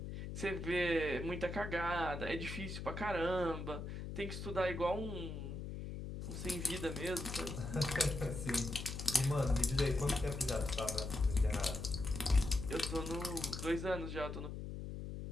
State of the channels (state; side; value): noise; left; hum, 6 dB below the sound